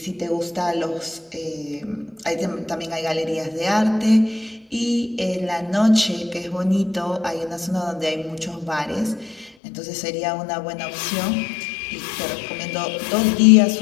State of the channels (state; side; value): drops out; right; at 9.6 s